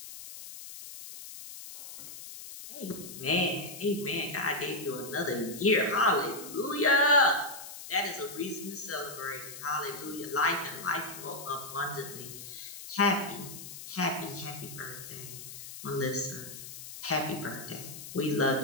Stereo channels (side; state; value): left; noise; hiss, 12 dB below the sound